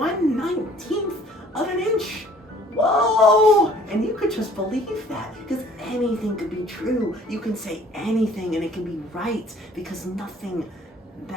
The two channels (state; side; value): normal; both; correlation 0.55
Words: of an inch. Whoa! And you could just believe that, because anything could be true. You can say anything and it can be right, because nothing